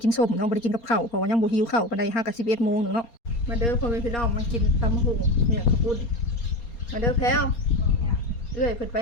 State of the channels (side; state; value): right; late; 4.3 ms